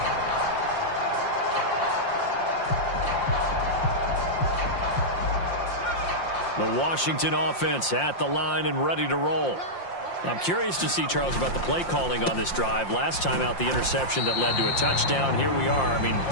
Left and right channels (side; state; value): right; late; 5.7 ms